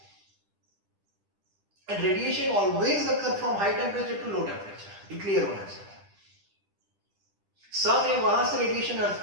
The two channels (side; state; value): left; late; 10 ms